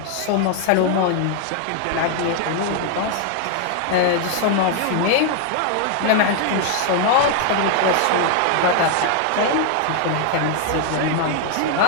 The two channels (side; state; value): both; different; correlation 0.00